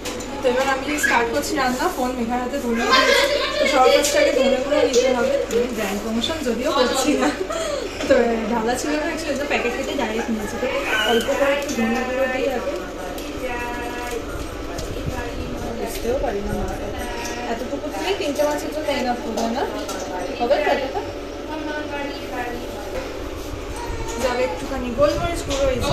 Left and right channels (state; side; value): identical; both; correlation 1.00